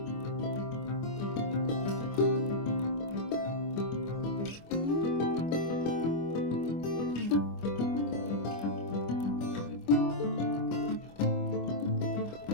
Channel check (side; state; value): right; late; 25 ms